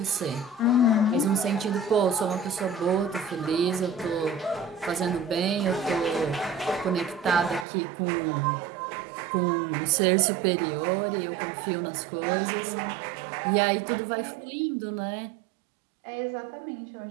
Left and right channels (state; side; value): drops out; left; at 7.7 s